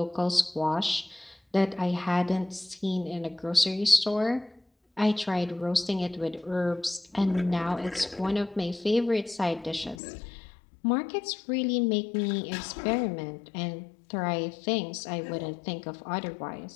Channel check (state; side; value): drops out; right; at 10.0 s